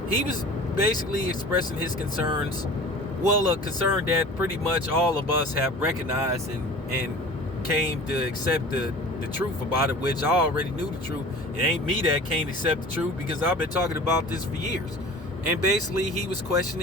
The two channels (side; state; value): both; normal; correlation 0.40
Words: He was basically expressing his concerns. Well, a concern that pretty much all of us have recognized and came to accept the truth about it, which I already knew the truth. It ain't me that can't accept the truth because I've been talking about this for years. And basically, he was